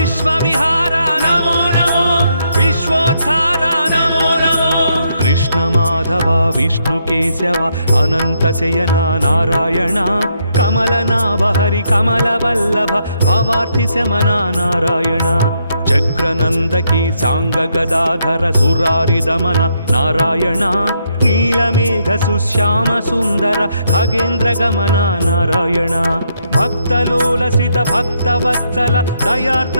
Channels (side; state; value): both; inverted; correlation -0.76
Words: నమో నమో, విశ్వోద్ధార నమో నమో. కృష్ణ మాధవ విష్ణు కేశవ అనంత శయన నారాయణ, కమలనాభ హరి కమల వల్లభ భవార్థి శమన నారాయణ, చక్రనందకి సాంగ గదాధర సురారి దమన నారాయణ, నీలమేఘ సుశ్యామ సుందర ఖగేంద్ర గమన నారాయణ, భక్తలోలసిత భక్తవత్సల